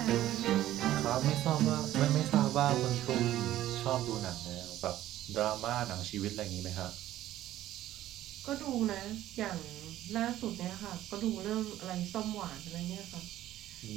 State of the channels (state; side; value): quieter; left; 13.7 dB